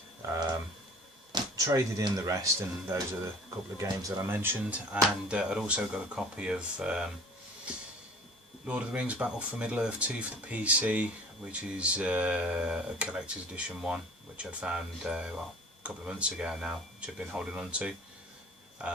Traded in the rest, and those are the couple of games that I mentioned, and I'd also got a copy of Lord of the Rings Battle for Middle-earth 2 for the PC, which is a collector's edition one, which I'd found well, a couple of months ago now, which I've been holding on to,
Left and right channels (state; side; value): normal; both; correlation 0.45